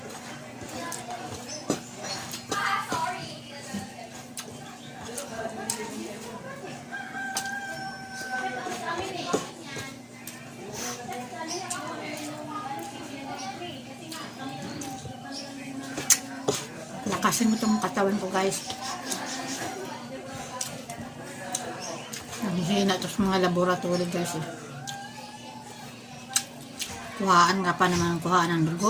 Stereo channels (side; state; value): both; identical; correlation 1.00